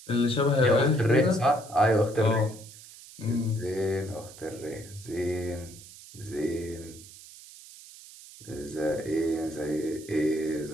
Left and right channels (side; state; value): right; noise; hiss, 18 dB below the sound